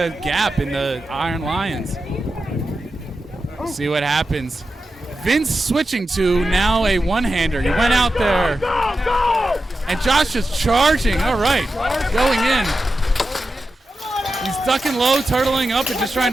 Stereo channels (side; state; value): both; normal; correlation 0.91